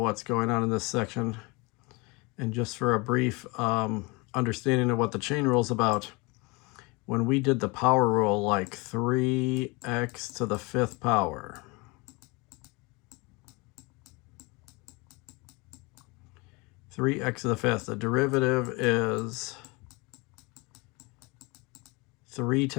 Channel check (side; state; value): right; quieter; 26.9 dB